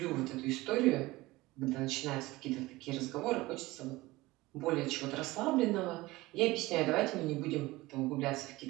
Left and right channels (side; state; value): left; quieter; 19.6 dB